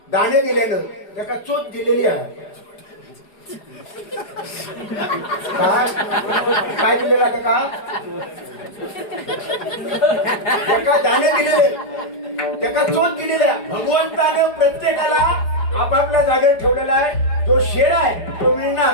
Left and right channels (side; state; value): right; late; 4.9 ms